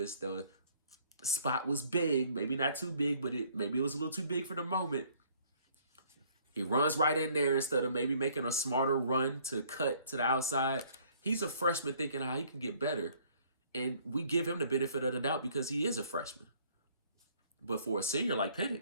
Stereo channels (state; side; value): inverted; both; correlation -0.60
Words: The spot was big, maybe not too big, but maybe it was a little too big for the moment. He runs right in there instead of maybe making a smarter run to cut to the outside. He's a freshman thinking how he can get better. And we give him the benefit of the doubt because he is a freshman. But for a senior like